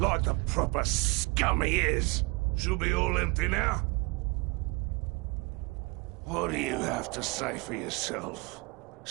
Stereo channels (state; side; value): quieter; left; 27.3 dB